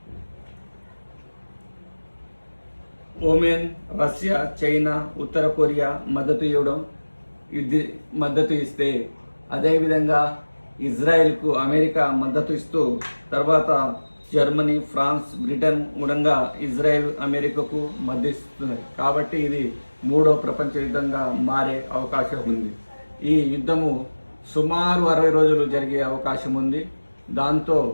ఒమేన్, రష్యా, చైనా, ఉత్తర కొరియా మద్దతు ఇస్తే, అదేవిధంగా ఇజ్రాయెల్కు అమెరికా మద్దతు ఇస్తూ, తర్వాత జర్మనీ, ఫ్రాన్స్, బ్రిటన్ కూడా ఇజ్రాయెల్ అమెరికాకు మద్దతిస్తున్నాయి. కాబట్టి ఇది మూడో ప్రపంచ యుద్ధంగా మారే అవకాశం ఉంది. ఈ యుద్ధము సుమారు 60 రోజులు జరిగే అవకాశం ఉంది. దాంతో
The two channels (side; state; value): both; inverted; correlation -1.00